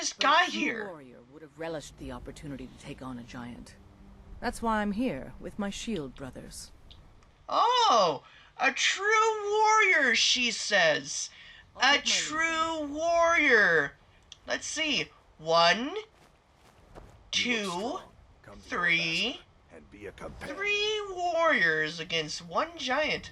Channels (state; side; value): identical; both; correlation 1.00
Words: But got a true here. warrior would have relished the opportunity to take on a giant. That's why I'm here, with my shield brothers. Oh, a true warrior, she says. I'll A take my leave true warrior. Let's see. 1, 2, Come to 3. your master and be a companion. 3 warriors against 1 giant.